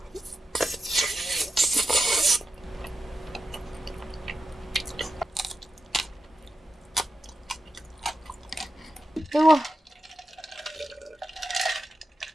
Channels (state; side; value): normal; both; correlation 0.89